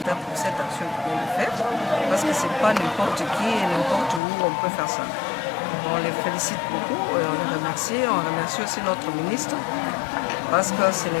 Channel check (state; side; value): drops out; right; at 4.2 s